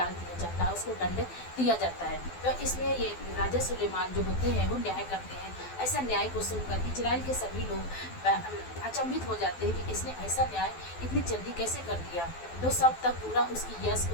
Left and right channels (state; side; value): late; right; 12 ms